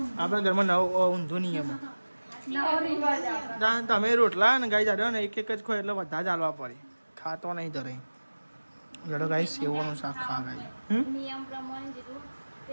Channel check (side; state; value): both; inverted; correlation -1.00